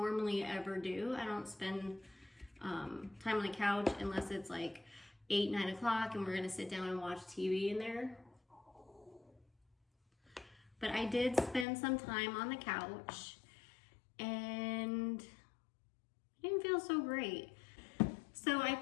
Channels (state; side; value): drops out; right; at 11.7 s